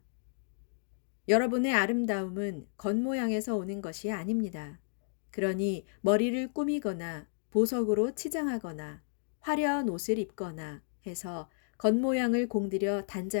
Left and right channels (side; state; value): right; silent; digital silence